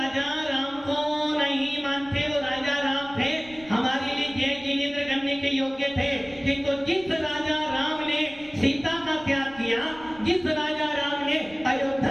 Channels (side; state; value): right; noise; rumble, 22 dB below the sound